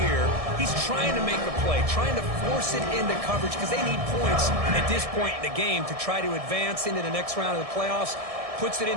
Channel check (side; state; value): left; late; 1.7 ms